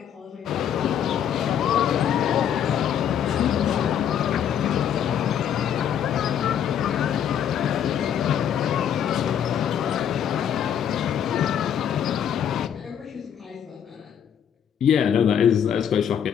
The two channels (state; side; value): quieter; right; 9.0 dB